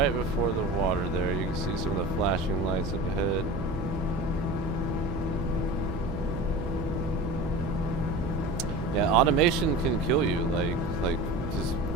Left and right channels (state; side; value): noise; right; hum, 8 dB below the sound